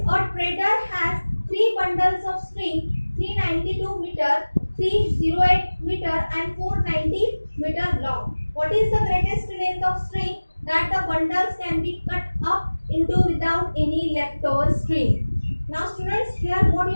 a trader has 3 bundles of string, 392 meter, 308 meter and 490 meter long. What is the greatest length of string that the bundles can be cut up into without any leftover string? Now students, here what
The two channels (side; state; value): both; inverted; correlation -1.00